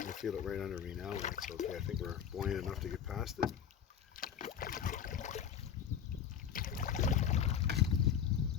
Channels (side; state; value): right; quieter; 8.4 dB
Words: feel it right under me now. That's okay. I think we're buoyant enough to get past it.